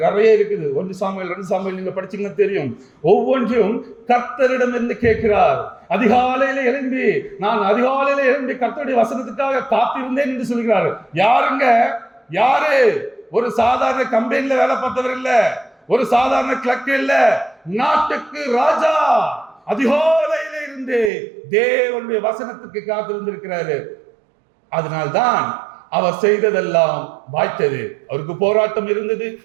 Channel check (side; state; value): left; drops out; at 21.1 s